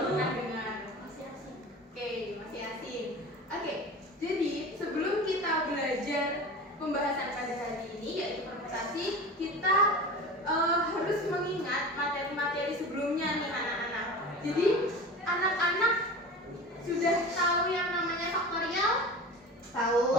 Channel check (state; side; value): normal; both; correlation 0.34